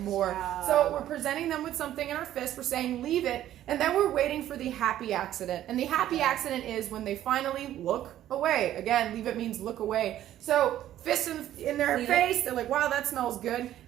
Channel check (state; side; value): quieter; left; 12.5 dB